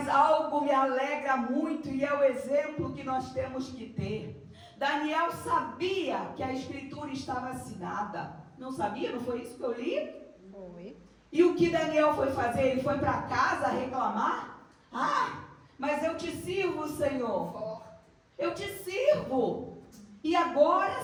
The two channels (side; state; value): both; identical; correlation 1.00